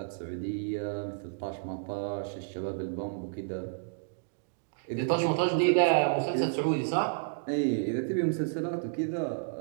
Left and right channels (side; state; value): left; silent; digital silence